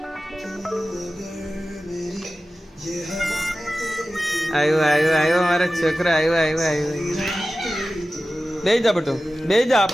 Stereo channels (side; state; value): both; normal; correlation 0.95